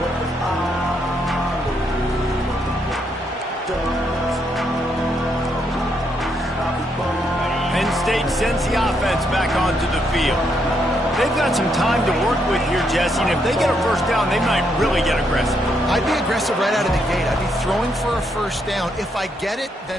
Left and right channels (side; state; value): both; normal; correlation 0.76